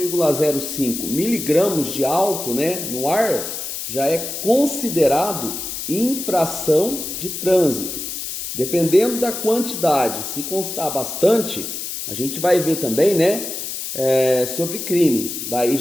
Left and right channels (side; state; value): left; noise; hiss, 6 dB below the sound